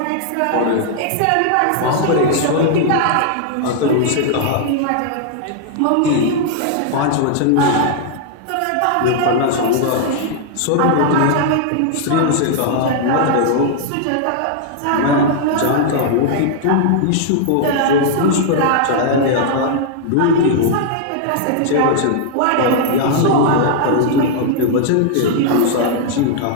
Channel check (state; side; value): different; both; correlation -0.01